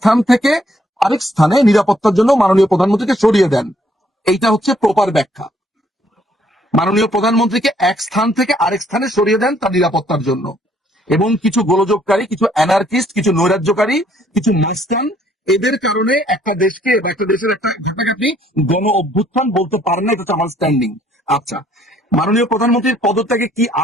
থেকে আরেক স্থানে নিরাপত্তার জন্য মাননীয় প্রধানমন্ত্রীকে সরিয়ে দেন। এইটা হচ্ছে প্রপার ব্যাখ্যা। মাননীয় প্রধানমন্ত্রীকে এক স্থান থেকে আরেক স্থানে সরিয়ে দেন তার নিরাপত্তার জন্য। এবং কিছু গোলযোগকারী, কিছু অ্যানার্কিস্ট, কিছু নৈরাজ্যকারী, কিছু মাস্তান, এদের কারণে একটা দেশকে বা একটা দেশের একটা ঘটনাকে আপনি গণ অভ্যুত্থান বলতে পারেন না। এটা হচ্ছে আমার স্ট্যান্ডিং। আচ্ছা, মাননীয় প্রধানমন্ত্রীর পদত্যাগে কি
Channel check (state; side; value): normal; both; correlation 0.66